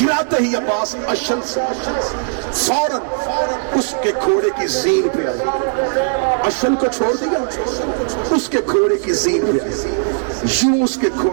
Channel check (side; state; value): left; silent; digital silence